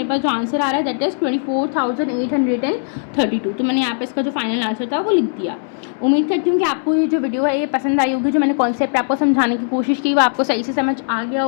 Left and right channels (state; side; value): silent; right; 66 dB below the other